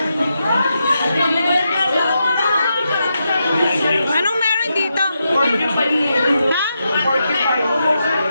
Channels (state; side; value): inverted; both; correlation -0.85